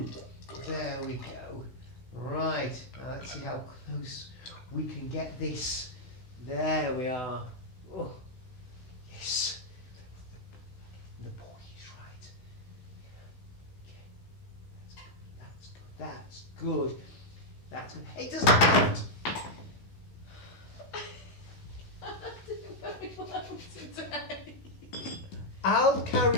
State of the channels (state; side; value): late; right; 16 ms